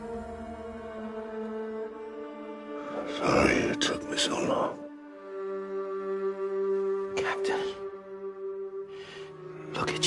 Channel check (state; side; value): identical; both; correlation 1.00